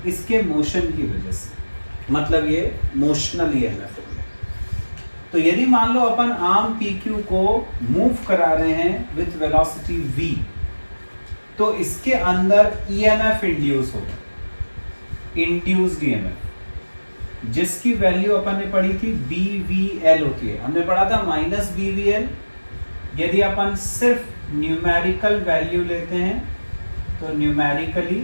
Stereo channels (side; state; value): both; inverted; correlation -1.00